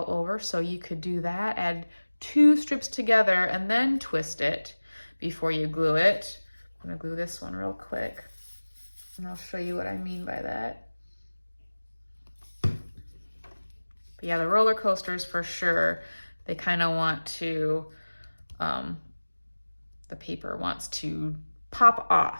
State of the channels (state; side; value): inverted; both; correlation -1.00